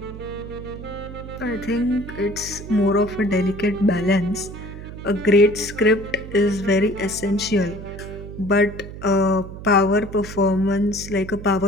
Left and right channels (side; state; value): right; noise; hum, 12 dB below the sound